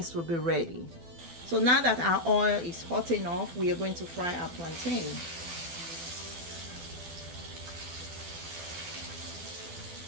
will be ready. So now that our oil is hot enough, we are going to fry our plantain.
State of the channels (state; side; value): late; left; 12 ms